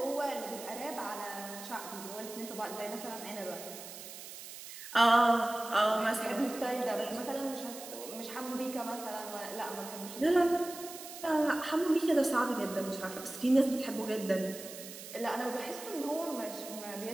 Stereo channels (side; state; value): right; noise; hiss, 12 dB below the sound